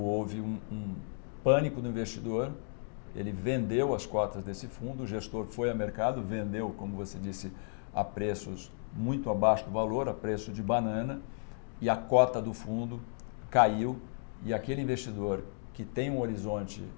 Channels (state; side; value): silent; right; digital silence